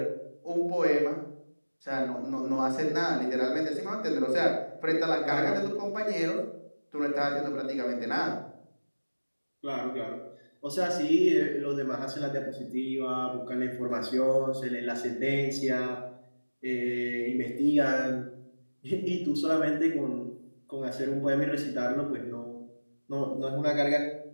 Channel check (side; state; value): both; inverted; correlation -1.00